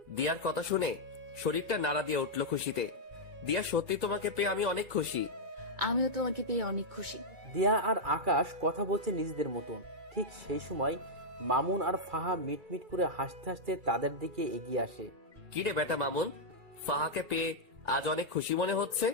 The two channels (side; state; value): left; late; 2.4 ms